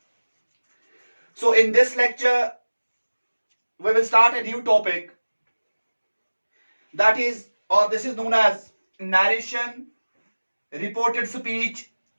So in this lecture, we will start a new topic that is, or this is known as narration, reported speech,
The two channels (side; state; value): both; inverted; correlation -1.00